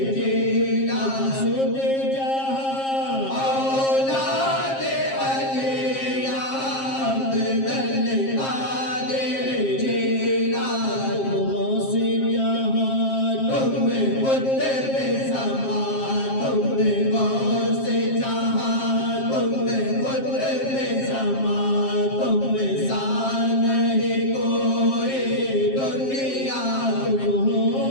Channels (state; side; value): late; right; 7.5 ms